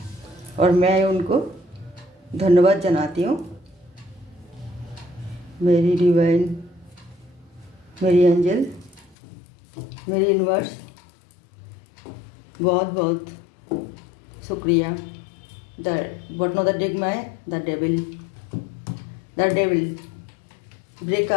और मैं उनको धन्यवाद जनाती हूँ। मेरी डिवाइन, मेरी एंजल, मेरी यूनिवर्स, बहुत बहुत शुक्रिया। The bottom of the deck में द डेविल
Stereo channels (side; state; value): right; drops out; at 9.2 s